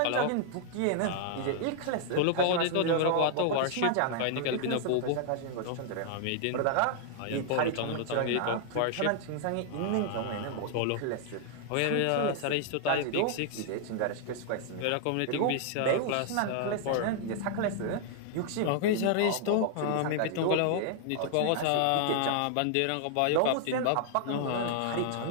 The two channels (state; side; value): different; both; correlation -0.01